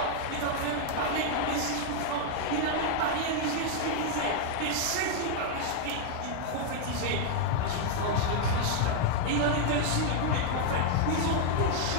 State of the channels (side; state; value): both; different; correlation 0.00